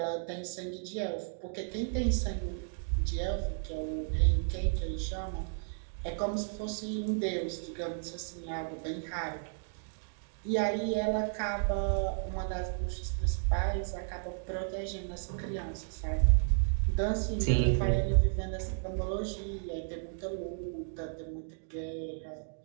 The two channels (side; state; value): left; silent; digital silence